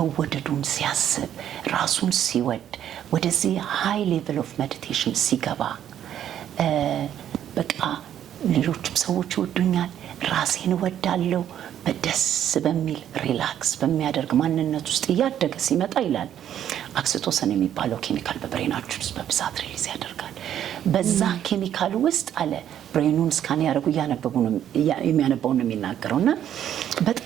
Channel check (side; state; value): left; quieter; 10.4 dB